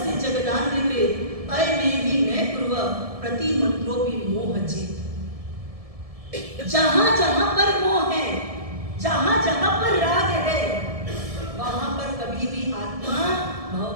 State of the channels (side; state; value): left; late; 1.7 ms